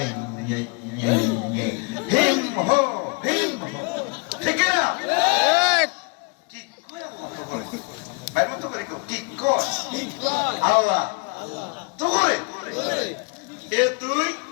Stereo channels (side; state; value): right; quieter; 31.2 dB